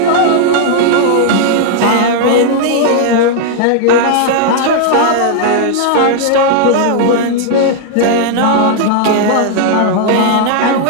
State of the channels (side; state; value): both; different; correlation -0.01